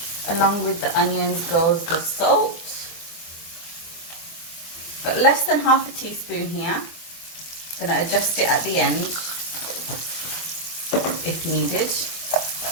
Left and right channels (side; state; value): right; late; 24 ms